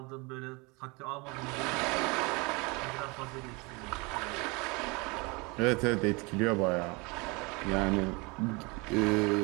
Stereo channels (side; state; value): left; quieter; 27.4 dB